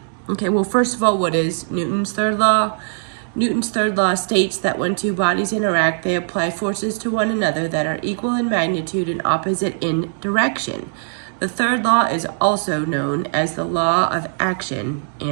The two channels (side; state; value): left; silent; digital silence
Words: Okay, well, first of all, what is Newton's third law? Newton's third law states that when two bodies interact, they apply forces to one another that are equal in magnitude and opposite in direction. The third law is also known as the law of action